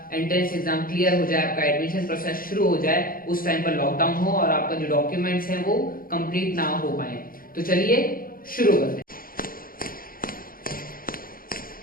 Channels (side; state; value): right; late; 0.42 ms